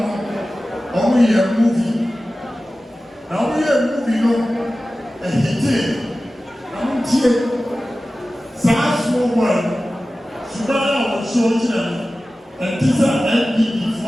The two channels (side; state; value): both; normal; correlation 0.96